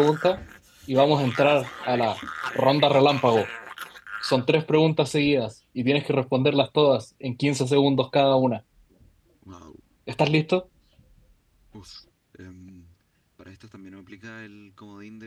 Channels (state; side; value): identical; both; correlation 1.00